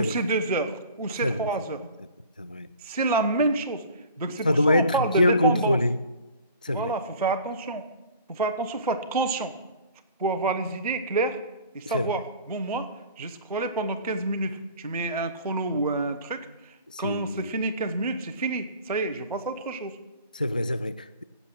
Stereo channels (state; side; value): inverted; both; correlation -0.45